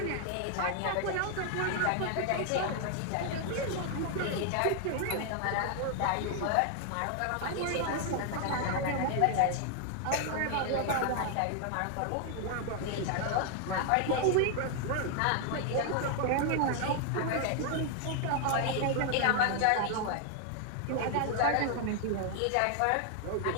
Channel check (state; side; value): different; both; correlation 0.00